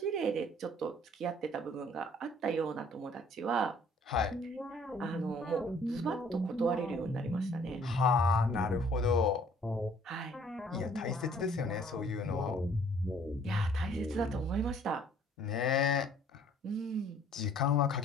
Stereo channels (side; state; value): both; normal; correlation 0.58